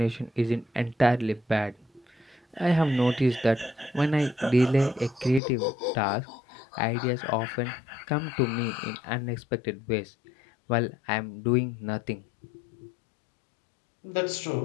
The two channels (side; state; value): right; drops out; at 5.4 s